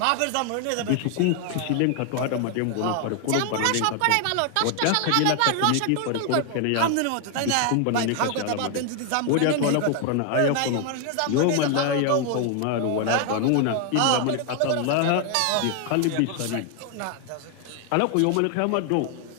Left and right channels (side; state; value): both; different; correlation 0.00